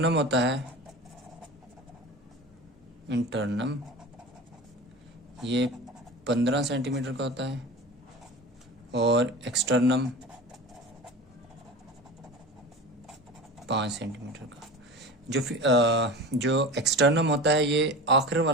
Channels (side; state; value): both; normal; correlation 0.32